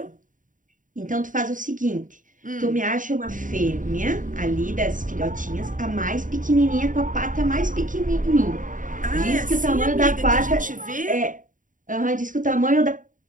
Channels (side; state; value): left; late; 0.38 ms